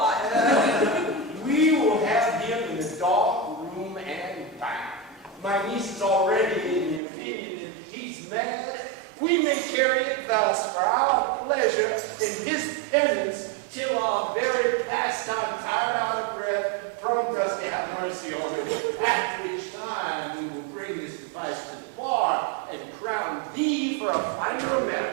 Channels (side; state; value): left; drops out; at 7.0 s